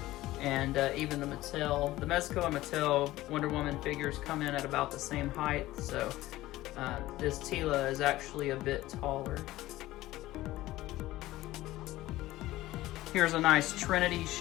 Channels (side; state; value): right; quieter; 16.6 dB